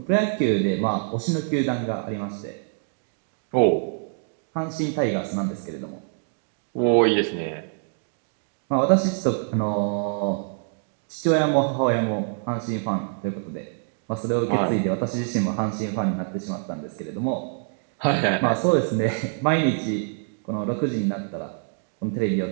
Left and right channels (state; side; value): silent; left; 62 dB below the other